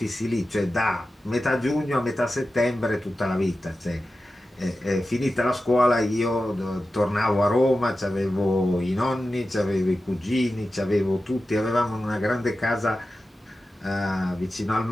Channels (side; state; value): both; normal; correlation 0.93